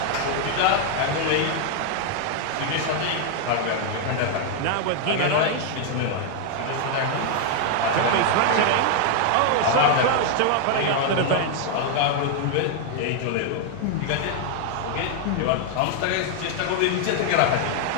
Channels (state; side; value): different; both; correlation 0.00